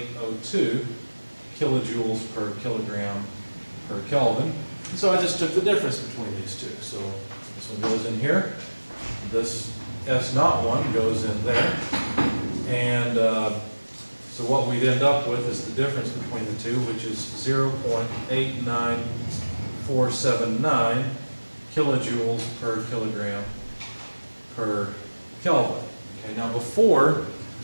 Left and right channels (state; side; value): inverted; both; correlation -1.00